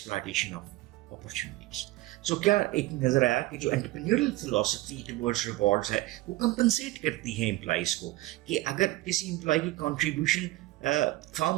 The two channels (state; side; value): quieter; left; 18.1 dB